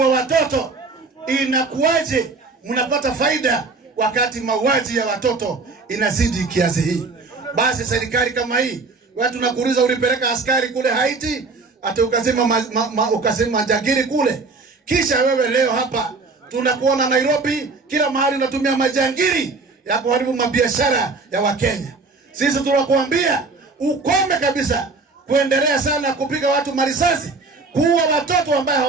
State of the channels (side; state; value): left; quieter; 3.9 dB